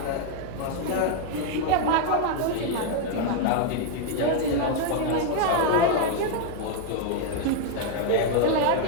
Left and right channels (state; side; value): different; both; correlation 0.00